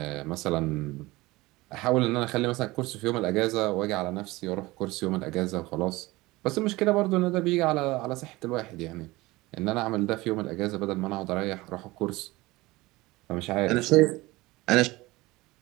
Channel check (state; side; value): quieter; left; 20.6 dB